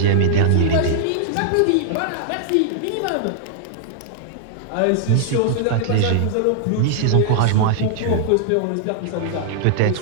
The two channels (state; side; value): different; both; correlation -0.01